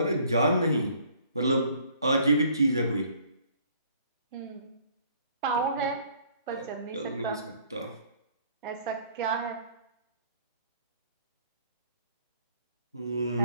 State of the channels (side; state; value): both; inverted; correlation -0.59